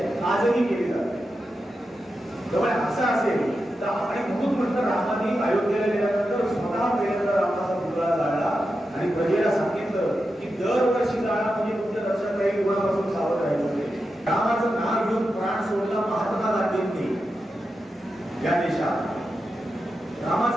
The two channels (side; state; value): both; normal; correlation 0.89